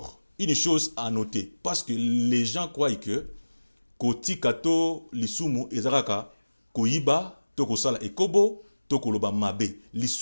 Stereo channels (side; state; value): both; inverted; correlation -1.00